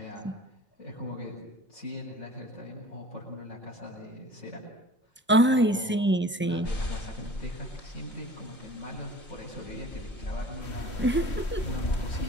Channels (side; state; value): both; normal; correlation 0.46